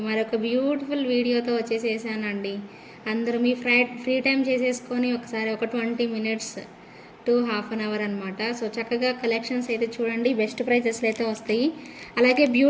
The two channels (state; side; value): identical; both; correlation 1.00